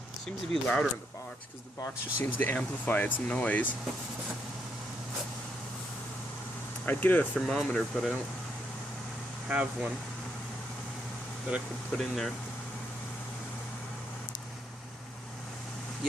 Seems to be louder in the box, because the box just seems to amplify its noise. I'd get a thermometer, but I don't have one that I could put in there.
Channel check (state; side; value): normal; both; correlation 0.76